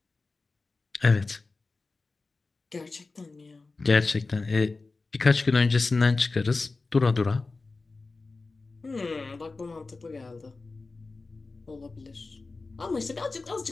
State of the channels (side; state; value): right; quieter; 3.7 dB